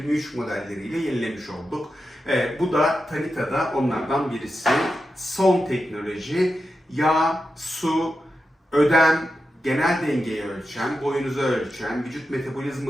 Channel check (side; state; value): both; normal; correlation 0.89